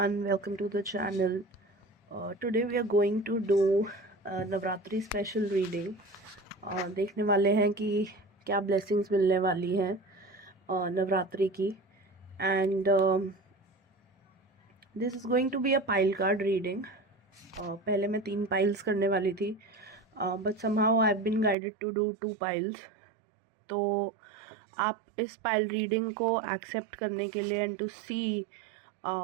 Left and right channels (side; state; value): left; drops out; at 21.6 s